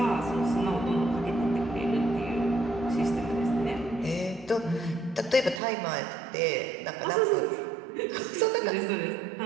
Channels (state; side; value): drops out; left; at 5.6 s